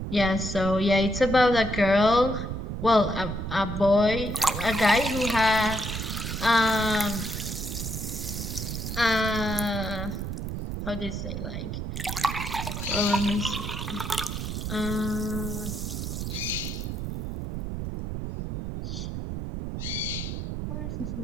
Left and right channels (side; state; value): right; noise; rumble, 4 dB below the sound